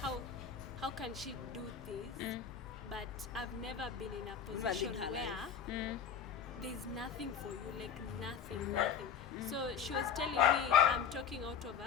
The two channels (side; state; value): right; quieter; 7.5 dB